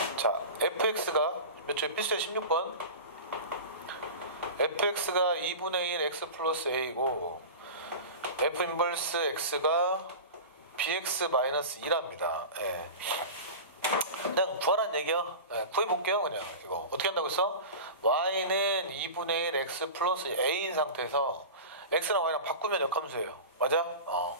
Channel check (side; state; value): both; inverted; correlation -0.31